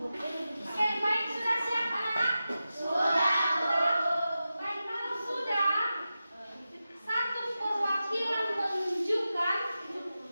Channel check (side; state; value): both; inverted; correlation -0.93